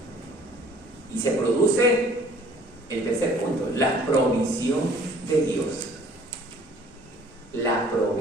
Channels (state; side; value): normal; both; correlation 0.54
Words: y se produce el tercer punto: la provisión de Dios. La